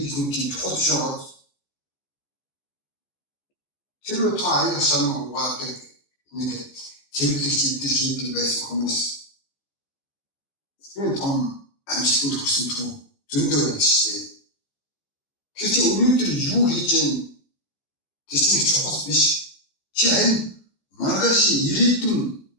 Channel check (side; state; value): right; late; 14 ms